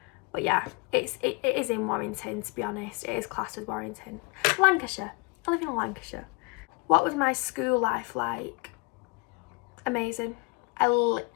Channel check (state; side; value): quieter; right; 28.4 dB